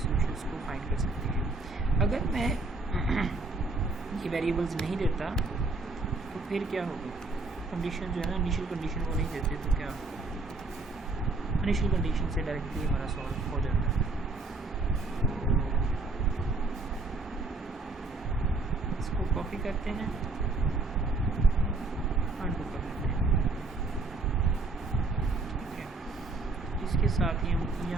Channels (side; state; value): left; quieter; 3.4 dB